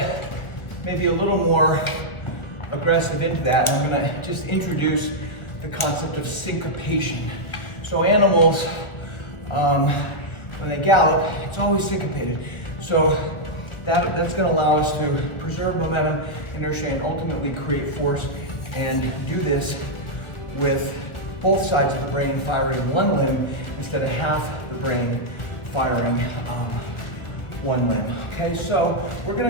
maybe a little more aggressive into that. And I'm gonna just introduce the concept of syncopation. So animals, when they gallop, it's always syncopated. So that's gonna allow us to preserve momentum, inertia, and ultimately create force, and do this with both sides of the brain firing one limb instead of half the brain firing one limb. Okay, so we're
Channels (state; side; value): late; right; 1.4 ms